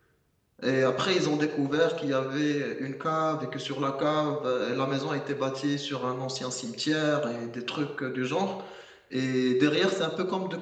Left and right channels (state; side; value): identical; both; correlation 1.00